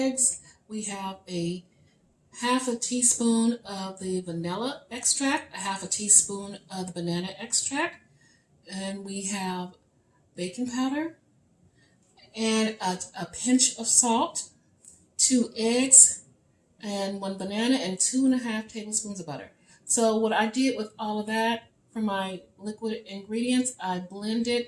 We have a 1/2 teaspoon of the vanilla extract, 1/2 teaspoon of the banana extract, and we have baking powder and a pinch of salt, 2 eggs, and 1 banana, and 2.5 tablespoons of butter. So what I did with all of that for my liquid ingredients, I blended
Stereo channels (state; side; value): identical; both; correlation 1.00